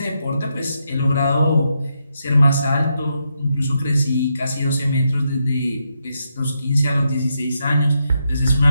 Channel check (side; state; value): both; inverted; correlation -0.82